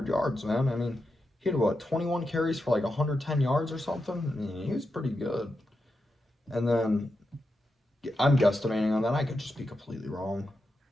yards, man. I mean, he had, 21 carries for like 110 yards or something? I mean, he was pretty good. And then, I'm guesstimating on that. I could just be completely wrong.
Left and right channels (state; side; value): normal; both; correlation 0.87